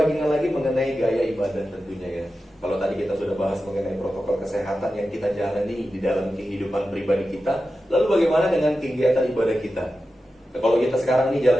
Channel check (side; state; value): both; normal; correlation 0.92